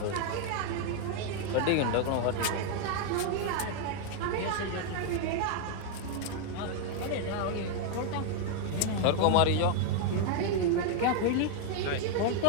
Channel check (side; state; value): both; different; correlation 0.00